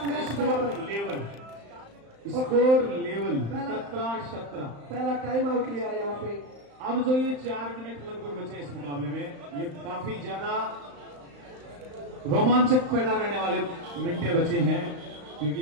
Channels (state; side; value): late; left; 35 ms